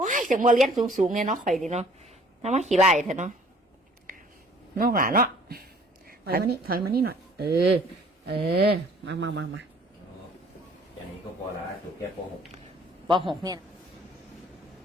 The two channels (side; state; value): both; normal; correlation 0.55